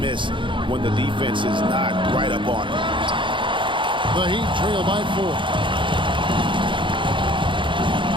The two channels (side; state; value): left; late; 0.24 ms